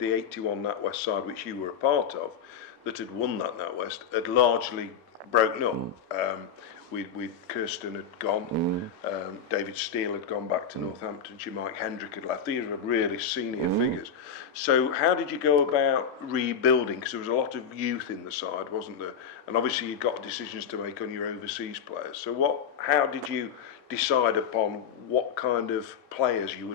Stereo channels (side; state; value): right; quieter; 7.0 dB